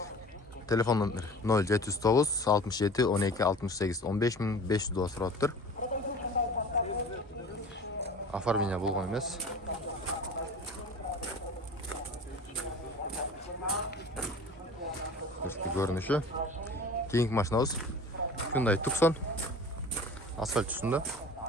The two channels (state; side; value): normal; both; correlation 0.40